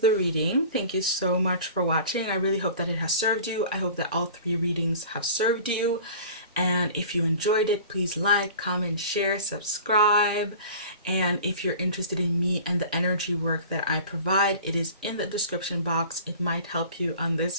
reading. Thank you so much for watching. I really hope that it has served you. I hope that all 3 readings have served you. And if you enjoyed it, please like, comment, share, subscribe. And if you're interested in me and the energy work that I provide, it is in the description box. It might help you on this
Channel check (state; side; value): inverted; both; correlation -0.42